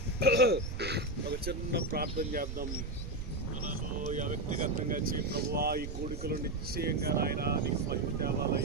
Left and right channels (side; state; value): right; noise; rumble, 7 dB below the sound